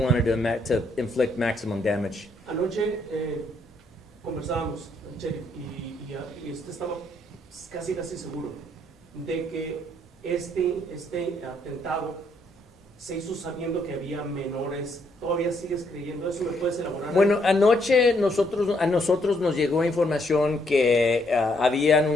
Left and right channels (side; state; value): both; normal; correlation 0.72